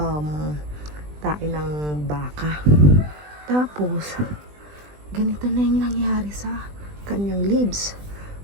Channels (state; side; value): late; left; 20 ms